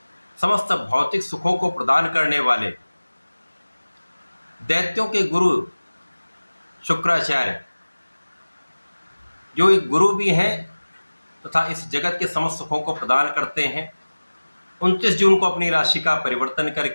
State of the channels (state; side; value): inverted; both; correlation -1.00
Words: समस्त भौतिक सुखों को प्रदान करने वाले दैत्यों के गुरु शुक्राचार्य, जो एक गुरु भी हैं तथा इस जगत के समस्त सुखों को प्रदान करते हैं, 29 जून को अपनी राशि का परिवर्तन